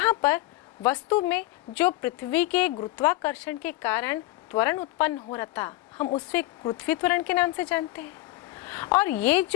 पर वस्तु में जो पृथ्वी के गुरुत्वाकर्षण के कारण त्वरण उत्पन्न हो रहा था, हम उसे गुरुत्वीय त्वरण के नाम से जानते हैं। और ये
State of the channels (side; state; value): right; quieter; 18.2 dB